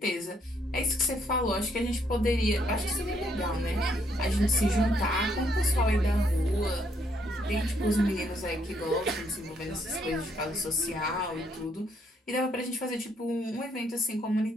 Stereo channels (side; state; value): both; normal; correlation 0.72